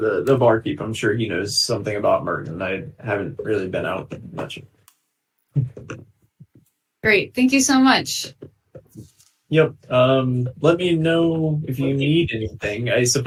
barkeep. I'm sure he knows something about Merton. I haven't really been out much. Great. Thank you so much. Yep. Let me know if you need anything. I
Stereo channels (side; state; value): both; identical; correlation 1.00